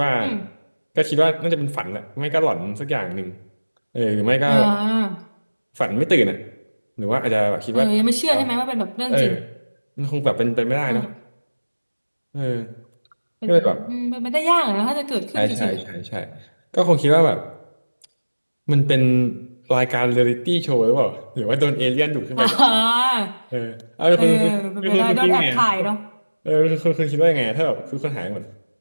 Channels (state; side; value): inverted; both; correlation -1.00